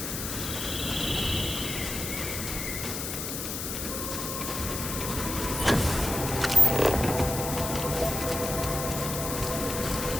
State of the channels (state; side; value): noise; left; hiss, 4 dB below the sound